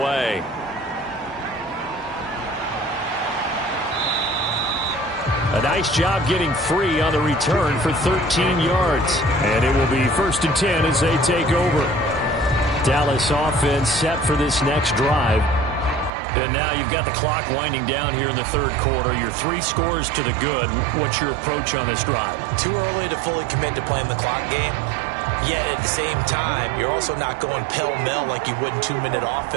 A nice job getting free on the return for 13 yards. And it will be 1st and 10 as they take over. Dallas offense set for this next drive. And now you've got the clock winding down here in the 3rd quarter. You're 3 scores to the good. What's your approach on this drive? Too early to fully commit to playing the clock game. Yet at the same time, you're also not going pell-mell like you would in 2-minute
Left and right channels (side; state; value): left; drops out; at 16.1 s